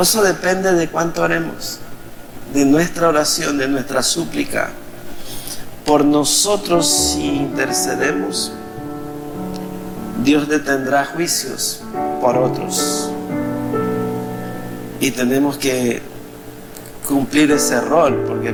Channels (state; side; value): identical; both; correlation 1.00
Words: eso depende de cuánto oremos, de nuestra oración, de nuestra súplica. Por nosotros, si intercedemos, Dios detendrá juicios por otros, y tenemos que cumplir ese rol, porque